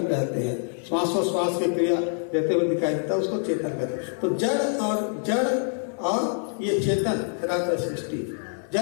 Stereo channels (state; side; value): silent; right; 61 dB below the other